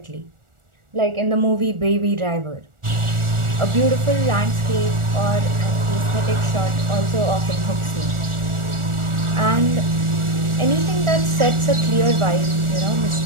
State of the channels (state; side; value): late; left; 1.4 ms